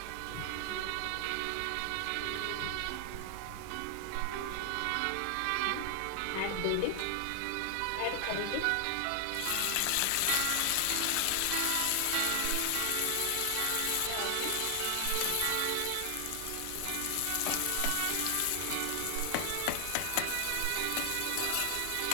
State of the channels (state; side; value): different; both; correlation 0.00